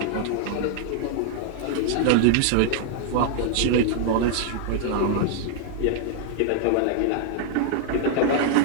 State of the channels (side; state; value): both; different; correlation 0.00